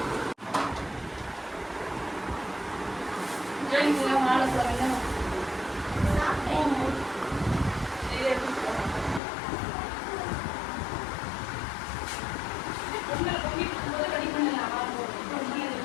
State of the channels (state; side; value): drops out; right; at 9.2 s